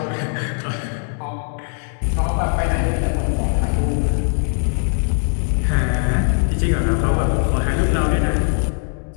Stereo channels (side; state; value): right; silent; 62 dB below the other